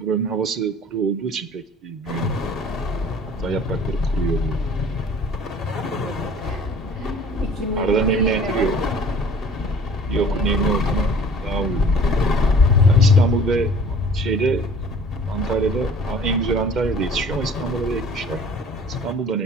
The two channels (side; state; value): both; normal; correlation 0.49